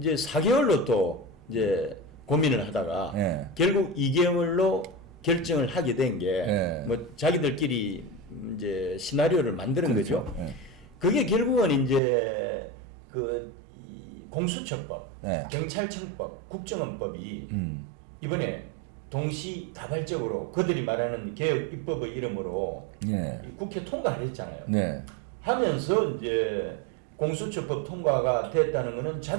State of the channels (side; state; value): left; drops out; at 12.0 s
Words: 4개월로 또 이제 고민을 하다가 예. 결국 2개월로 결정을 하게 된 게 뭐 예. 자기들끼리 이제 시나리오를 만드는 그렇죠. 거죠. 예. 그게 결국은 이제 이 공수처법, 예. 경찰청법, 국정원법이 이번에 동시다발적으로 그들이 말하는 개혁 입법의 이름으로 예. 이 국회 통과를 했잖아요. 네. 하면서 이제 공수처법 통과가 됐다는 것은